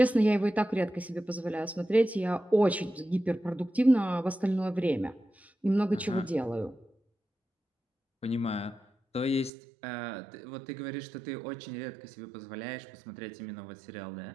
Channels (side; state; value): left; drops out; at 9.5 s